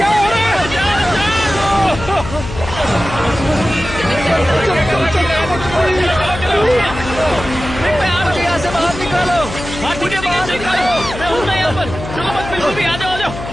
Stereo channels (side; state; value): left; noise; hum, 10 dB below the sound